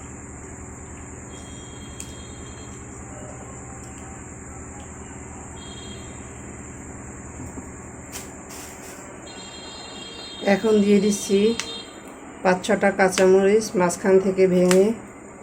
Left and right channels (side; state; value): both; identical; correlation 1.00